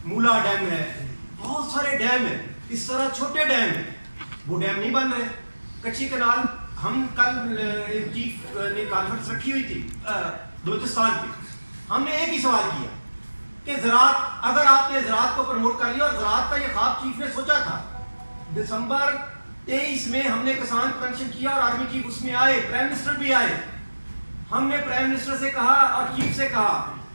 مولا ڈیم ہے, بہت سارے ڈیم ہیں, اس طرح چھوٹے ڈیم ہیں, وہ ڈیم نہیں بن رہے. کچی کنال ہم کل چیف نے کانفرنس رکھی ہوئی تھی بلوچستان پہ, ہم نے ایک ہی سوال کیا کہ زراعت, اگر آپ نے زراعت کو پروموٹ کر لیا, اور زراعت کا یہ خواب چیف نے سوچا تھا. دسمبر 23 میں ہم نے کسان کنونشن کیا اور آرمی چیف اس میں آئے, پرائم منسٹر بھی آئے. ہم نے پرائم منسٹر سے کہا اور چیف سے کہا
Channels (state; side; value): inverted; both; correlation -1.00